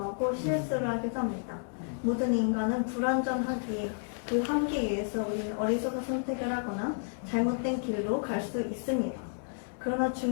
실수를 하기도 합니다. 모든 인간은 불완전하기에 그 한계에 의해서 우리는 어리석은 선택을 하거나 잘못된 길로 갈 수 있습니다. 그러나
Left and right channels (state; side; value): silent; right; digital silence